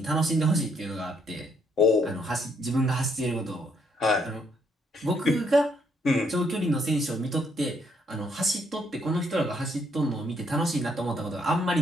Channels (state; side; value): normal; both; correlation 0.71